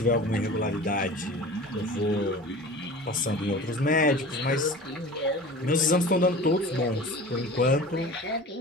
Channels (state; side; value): normal; both; correlation 0.38